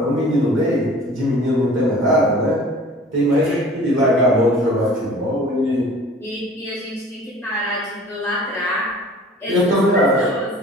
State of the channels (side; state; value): both; normal; correlation 0.47